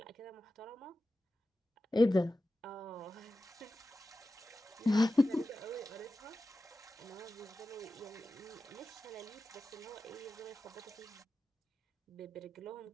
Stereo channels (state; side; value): normal; both; correlation 0.94